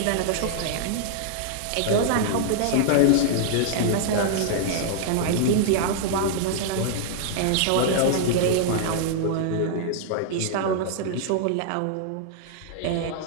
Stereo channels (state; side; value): different; both; correlation -0.01